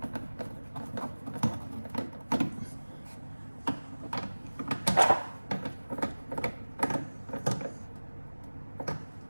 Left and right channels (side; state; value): both; inverted; correlation -1.00